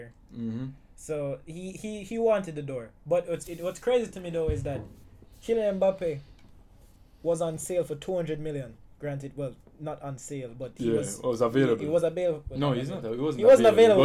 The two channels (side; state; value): both; identical; correlation 1.00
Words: So he wanted the door. But what's crazy to me though is that Kylian Mbappe was on sale for 200 million. Granted, well, not on sale, but he was available. He was available. No, he's not. He wasn't